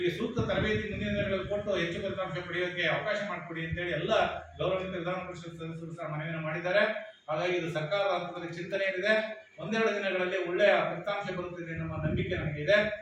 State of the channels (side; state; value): both; identical; correlation 1.00